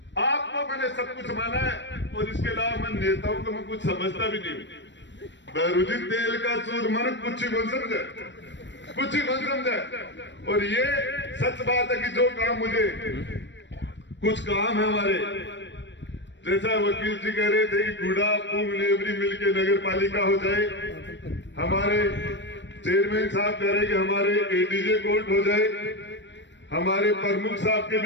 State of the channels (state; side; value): late; right; 0.53 ms